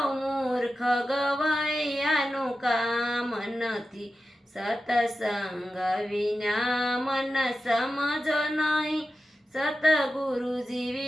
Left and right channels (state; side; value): normal; both; correlation 0.92